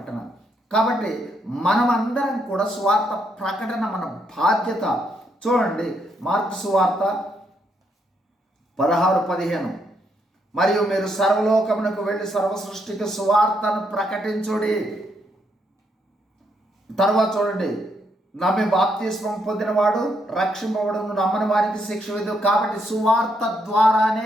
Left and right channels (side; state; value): both; normal; correlation 0.76